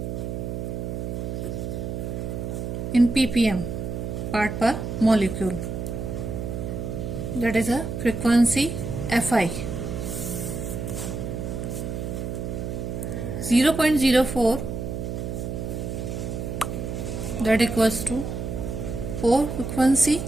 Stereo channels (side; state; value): right; noise; hum, 4 dB below the sound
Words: in ppm, part per molecule. That is a frequency Fi. 0.04, that equals to 4 frequency.